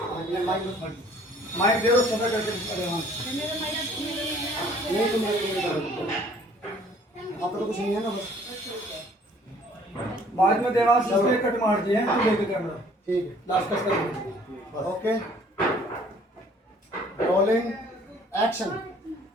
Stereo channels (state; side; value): normal; both; correlation 0.57